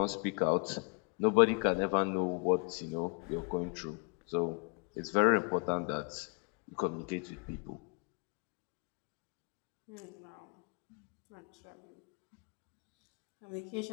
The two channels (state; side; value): quieter; right; 35.5 dB